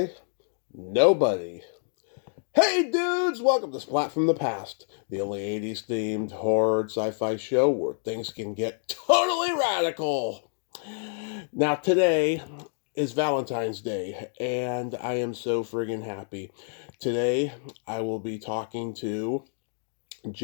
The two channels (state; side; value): silent; right; digital silence